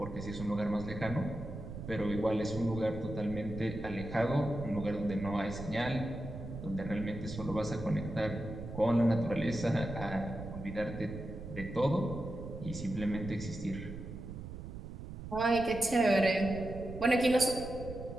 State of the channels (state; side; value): noise; right; rumble, 10 dB below the sound